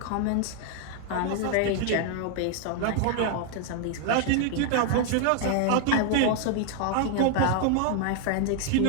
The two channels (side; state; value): both; different; correlation 0.00